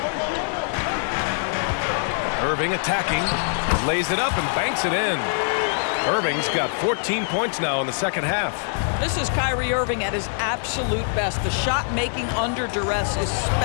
Irving attacking, lays it up and banks it in. Irving's got 14 points now in the second half. This is Kyrie Irving at his absolute best. The shot making under duress is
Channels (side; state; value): right; silent; 63 dB below the other